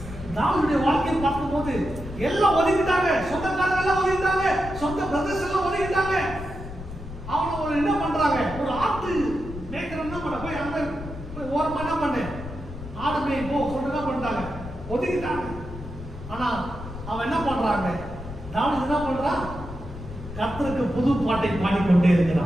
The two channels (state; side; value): noise; left; rumble, 11 dB below the sound